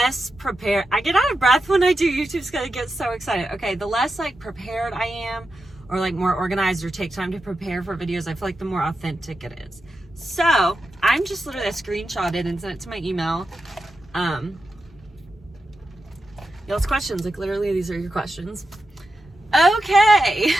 prepared. I get out of breath when I do YouTube's gonna get so excited. Okay, the less like prepared I am, or like more organized, or take time to prepare for videos, I feel like the more authentic it is. So I'm just literally screenshotted and sent it to my email. Y'all's questions, like literally these are your questions. Okay.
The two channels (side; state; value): both; normal; correlation 0.89